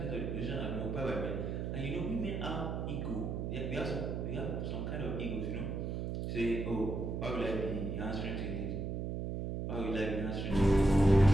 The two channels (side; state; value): right; noise; hum, 3 dB below the sound